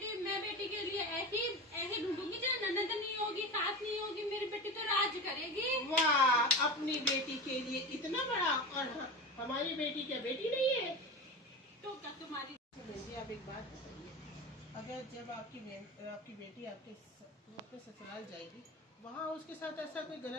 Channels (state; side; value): normal; both; correlation 0.26